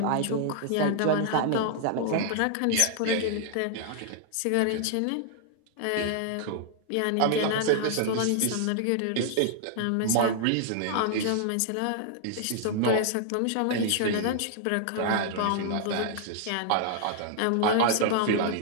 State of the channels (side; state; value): both; different; correlation -0.01